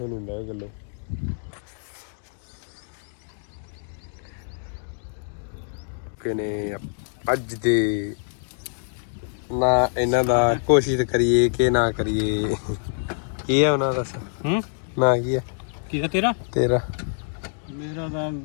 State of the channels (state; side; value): silent; right; digital silence